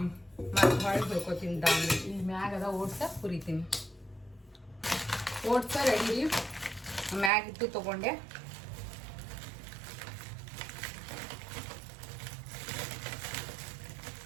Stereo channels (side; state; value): left; drops out; at 7.3 s